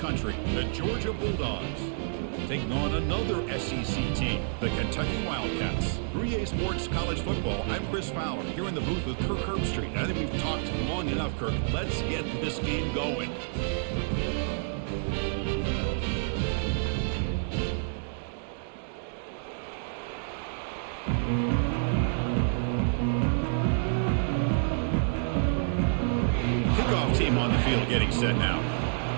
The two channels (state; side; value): silent; left; digital silence